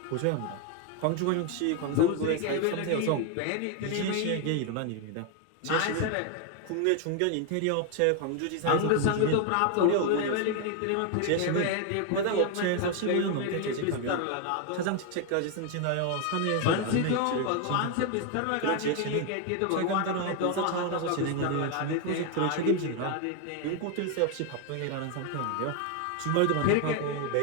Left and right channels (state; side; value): different; both; correlation 0.01